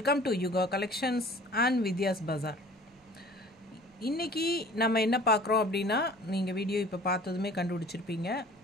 to Yuga Collections and Vidya's Bazaar. இன்னைக்கு நம்ம என்ன பார்க்குறோம் அப்படின்னா நீங்கள் வீடியோ இப்போ பார்த்ததுமே கண்டுபிடிச்சிருப்பீங்க.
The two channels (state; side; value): normal; both; correlation 0.48